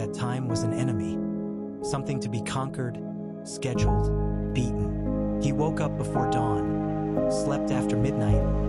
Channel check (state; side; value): identical; both; correlation 1.00